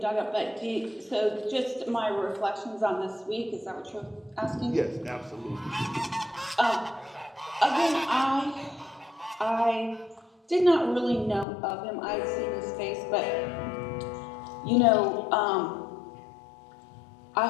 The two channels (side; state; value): right; drops out; at 11.5 s